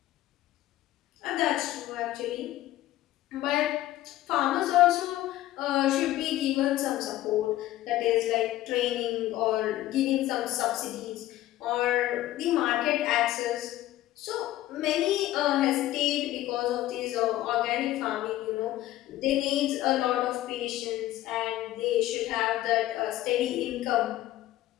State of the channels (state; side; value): quieter; right; 14.9 dB